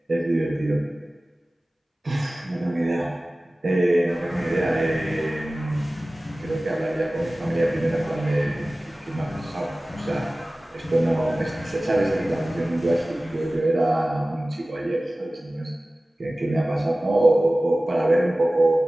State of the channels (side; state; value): both; normal; correlation 0.97